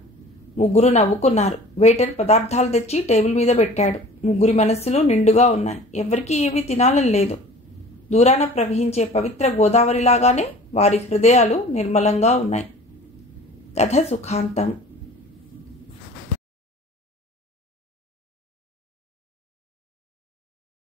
ముగ్గురు నవ్వుకున్నారు. వెయిటర్ పదార్థాలు తెచ్చి టేబుల్ మీద పెట్టాడు. ముగ్గురి మనస్సులు నిండుగా ఉన్నాయి. ఎవరికీ ఏమీ తినాలని లేదు. దూరాన ప్రవహించే పవిత్ర గోదావరిలాగానే వారి హృదయాలు నిర్మలంగా ఉన్నాయి. కథ సుఖాంతం.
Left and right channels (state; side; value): normal; both; correlation 0.44